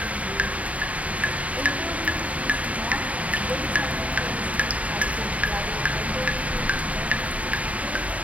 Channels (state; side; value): late; left; 0.068 ms